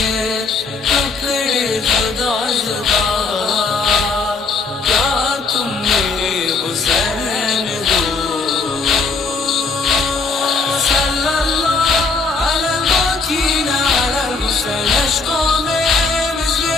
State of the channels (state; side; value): quieter; right; 4.2 dB